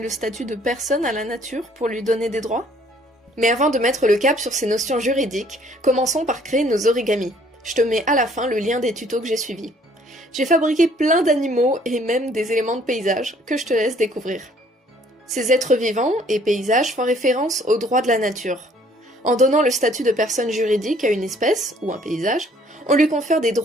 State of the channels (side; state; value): both; normal; correlation 0.60